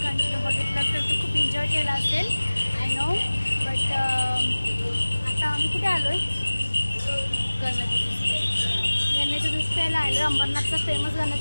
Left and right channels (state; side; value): inverted; both; correlation -1.00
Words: कंटिन्यू बघितलं तर तू खूप एन्जॉय केला असेल, आय नो. बट आता आम्ही कुठे आलो आहे? गण्याच्या ज्यूस प्यायला आलो. अंबरनाथचा फेमस